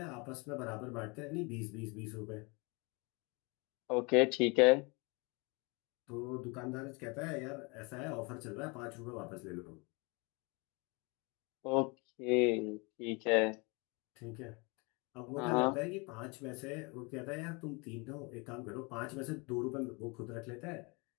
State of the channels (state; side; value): quieter; right; 29.4 dB